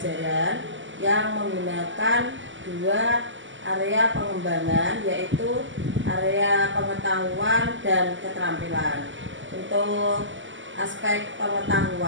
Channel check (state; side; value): late; left; 0.55 ms